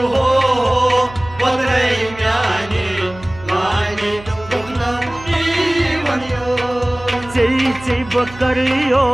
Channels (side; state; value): right; noise; hum, 18 dB below the sound